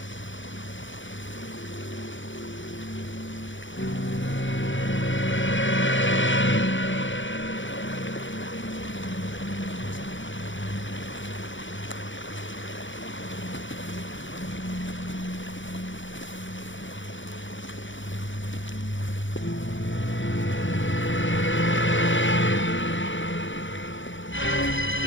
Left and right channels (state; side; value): late; right; 0.55 ms